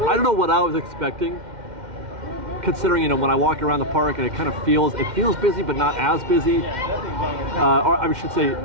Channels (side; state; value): left; late; 2.1 ms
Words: I don't know what I was expecting, considering, you know, when I walk around the park and it kind of feels busy, but not as busy. Or I should say,